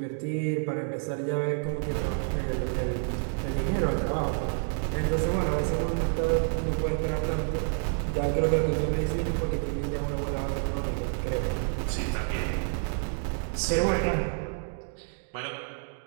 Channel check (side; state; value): left; silent; 59 dB below the other